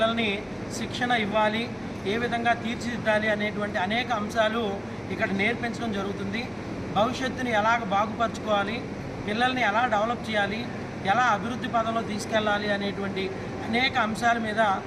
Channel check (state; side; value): identical; both; correlation 1.00